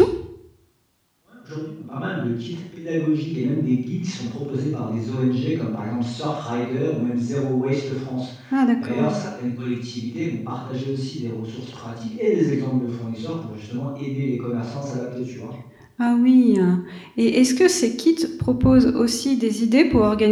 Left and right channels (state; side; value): identical; both; correlation 1.00